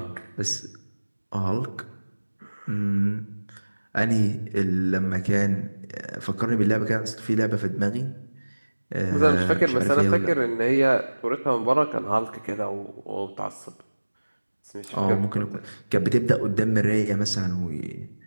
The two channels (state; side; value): inverted; both; correlation -1.00